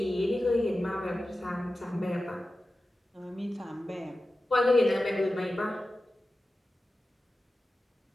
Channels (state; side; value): normal; both; correlation 0.94